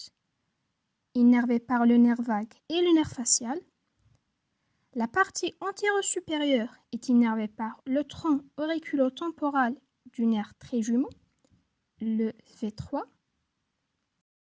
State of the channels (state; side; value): identical; both; correlation 1.00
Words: innervé par le nerf vague et le nerf facial. La partie antéro-supérieure est innervée par le tronc auriculo-temporal du nerf trijumeau, le V3.